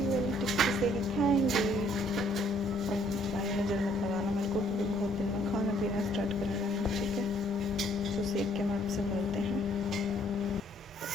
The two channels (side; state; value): both; normal; correlation 0.64